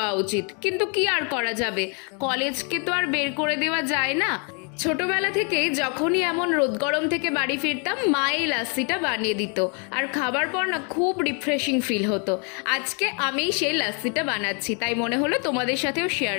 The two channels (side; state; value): right; quieter; 36.9 dB